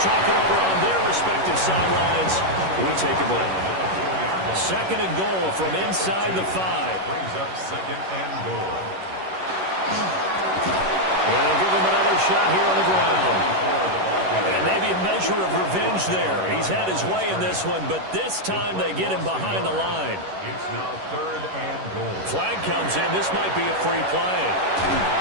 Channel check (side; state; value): left; late; 11 ms